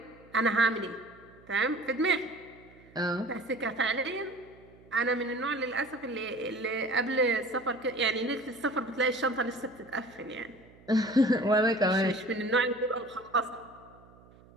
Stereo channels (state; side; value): noise; right; hum, 25 dB below the sound